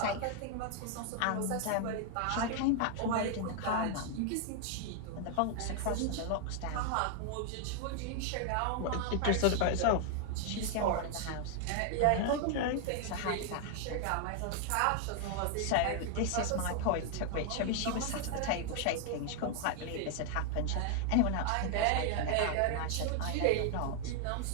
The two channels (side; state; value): both; different; correlation 0.00